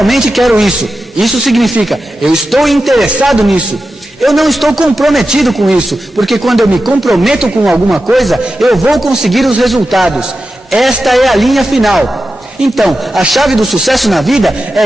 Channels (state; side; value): normal; both; correlation 0.91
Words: quero isso. Isso significa, eu estou interessado nisso. Eu não estou comprometido com isso, porque quando eu me comprometo com alguma coisa, eu vou conseguir os resultados. Esta é a linha final. Então, a chave do sucesso na vida é